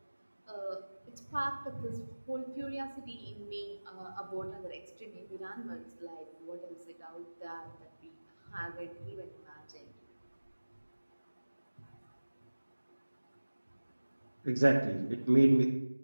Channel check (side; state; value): both; inverted; correlation -1.00